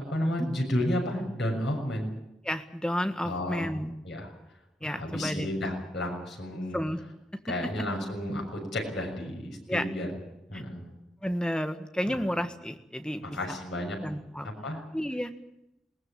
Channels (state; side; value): normal; both; correlation 0.82